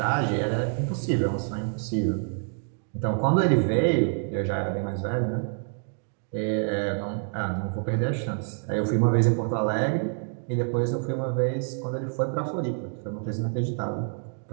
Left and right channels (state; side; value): silent; left; 60 dB below the other